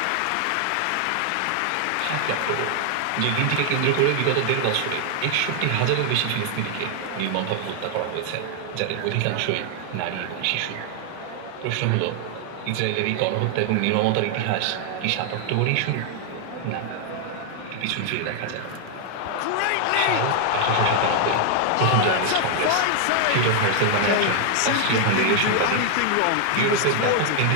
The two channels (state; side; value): different; both; correlation 0.00